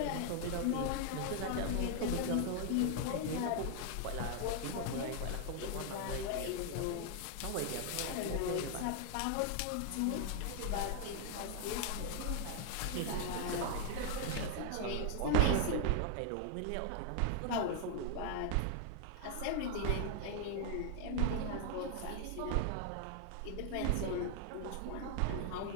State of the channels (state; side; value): different; both; correlation 0.00